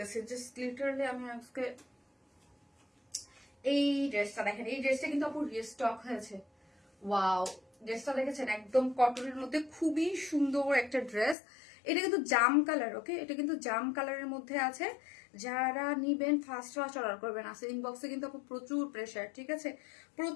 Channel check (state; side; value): drops out; right; at 11.4 s